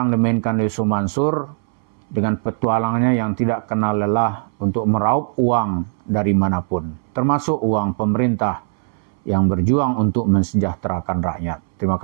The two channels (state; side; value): silent; left; 65 dB below the other